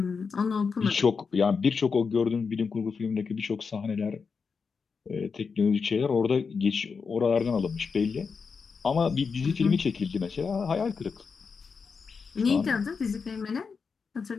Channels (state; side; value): quieter; right; 5.4 dB